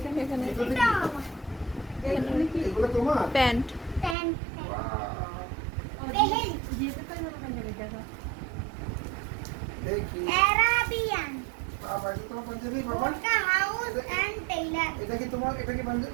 এখানে এটা আমার এখানে কি এগুলো তোমার প্যান্ট প্যান্ট বাহ, পেহেল যেতে পারি না পাঞ্জাবি দেখা দেখি অ্যারাবিয়ান বাবা এটা তোমার পাঞ্জাবি বাবা বোরকা হাউস এন্ড টেইলার এটা কি তোমার এটা কি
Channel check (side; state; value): left; drops out; at 4.2 s